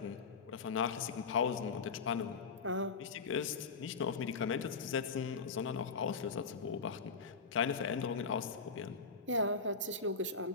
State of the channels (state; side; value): quieter; right; 4.9 dB